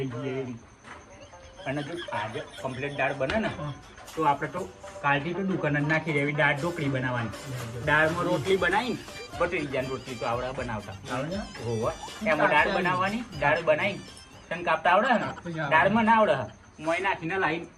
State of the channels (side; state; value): both; identical; correlation 1.00